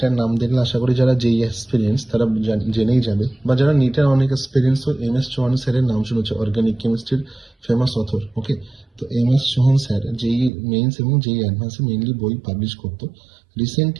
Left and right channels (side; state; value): left; drops out; at 10.5 s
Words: নাম দেখলে আশা করি যারা যেই এক্সপিরিয়েন্স তারা জেনেই যাবে, বা যারা নিটের অনেক এক্সপিরিয়েন্স MS চৌহান স্যারের নাম শুনেছে, অর্গানিক কেমিস্ট্রির ফেমাস অথর। ওকে, তো MS চৌহান স্যার যেই মেইনস এবং যেই অ্যাডভান্সে মেইনলি বই পাবলিশ করতো,